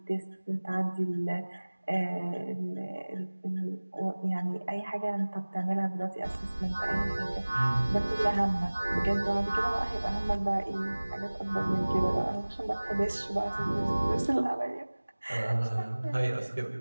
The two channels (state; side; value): inverted; both; correlation -1.00